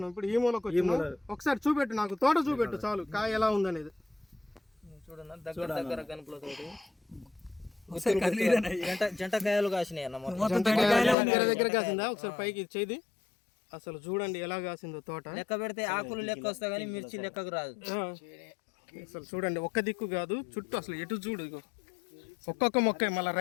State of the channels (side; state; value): right; drops out; at 11.2 s